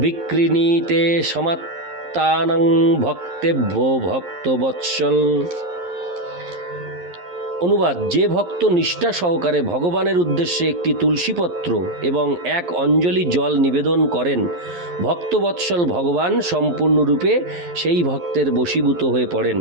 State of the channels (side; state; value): left; late; 11 ms